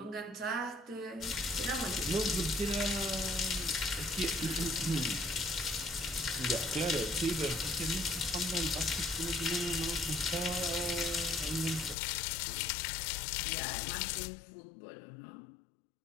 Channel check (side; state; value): right; drops out; at 12.0 s